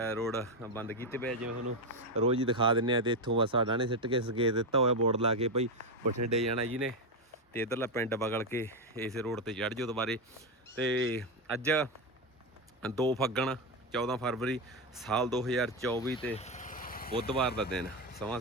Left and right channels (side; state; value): both; normal; correlation 0.08